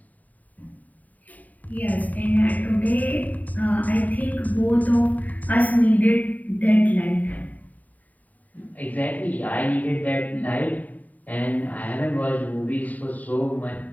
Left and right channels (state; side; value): late; right; 0.076 ms